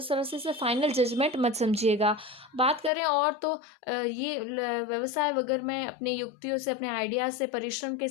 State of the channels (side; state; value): right; drops out; at 2.9 s